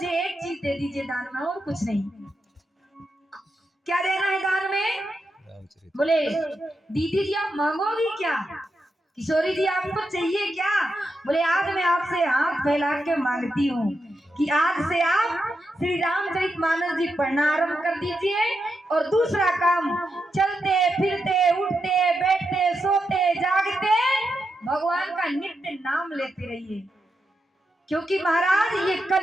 एक चीज दे दीजिए दान में, और कुछ नहीं। क्या देना है दान में? बोले दीदी जी आप मांगोगी क्या? किशोरी जी आपको चाहिए क्या? बोले आज मैं आपसे हाथ फैला के मांगती हूँ कि आज से आप श्री रामचरितमानस जी पढ़ना आरंभ कर दीजिए, और दूसरा काम, चलते फिरते उठते बैठते सोते जागते भगवान का नित्य नाम लेते रहिए। क्योंकि महाराज ये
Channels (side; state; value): both; normal; correlation 0.85